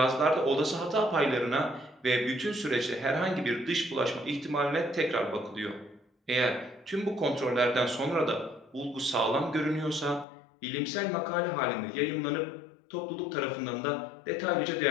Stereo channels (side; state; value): right; drops out; at 10.2 s